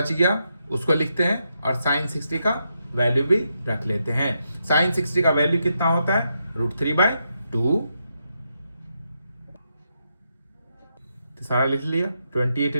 गया उसको लिखते हैं और साइन 60 का वैल्यू भी रख लेते हैं। साइन 60 का वैल्यू कितना होता है √3/2। तो सारा लिख लिया। 28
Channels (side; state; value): both; inverted; correlation -0.83